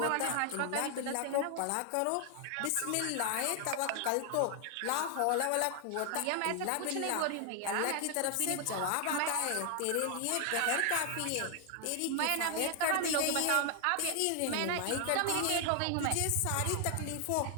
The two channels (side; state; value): both; different; correlation 0.00